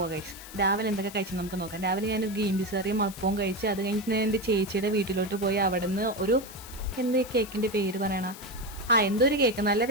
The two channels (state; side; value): noise; left; hiss, 15 dB below the sound